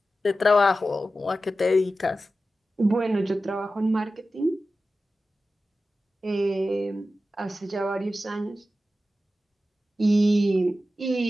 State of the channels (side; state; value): both; normal; correlation 0.93